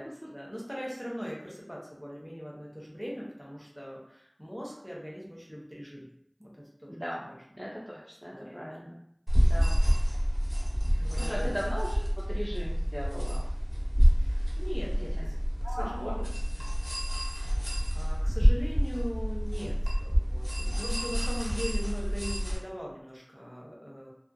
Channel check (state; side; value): identical; both; correlation 1.00